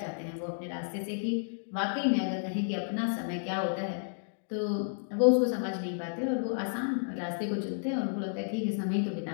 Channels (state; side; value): silent; right; digital silence